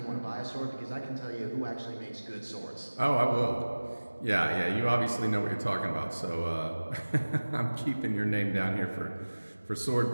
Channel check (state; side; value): inverted; both; correlation -1.00